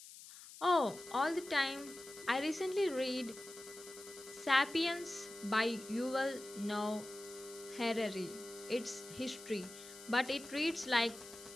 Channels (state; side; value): noise; left; hiss, 16 dB below the sound